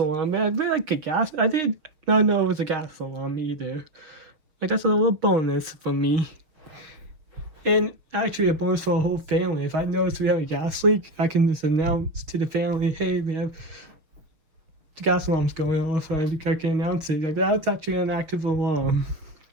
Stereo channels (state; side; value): late; left; 6.5 ms